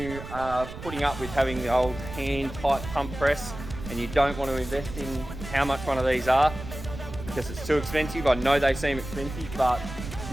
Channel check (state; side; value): noise; right; rumble, 11 dB below the sound